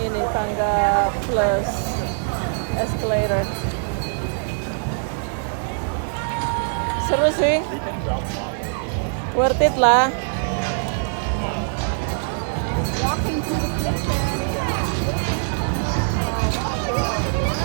tangga plus escalator. Seru sih, worth it lah.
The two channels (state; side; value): silent; left; digital silence